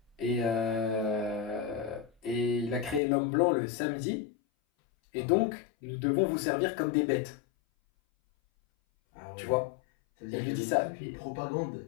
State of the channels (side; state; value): right; drops out; at 3.0 s